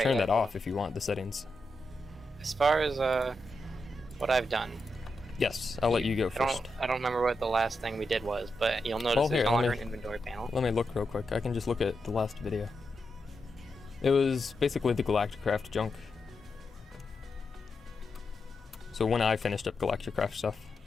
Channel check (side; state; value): both; normal; correlation 0.86